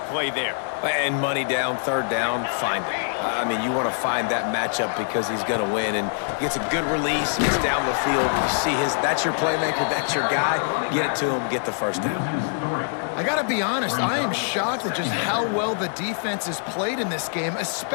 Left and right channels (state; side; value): silent; right; digital silence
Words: play there. And money down, 3rd down, find it. I mean, you want to find that matchup because he's going to win, and gets a good release, gets down the field. You see that's your playmaker, that's your guy. Get it to him, get the 1st down. I got to be honest, I am shocked at just how well the defense has played in this game,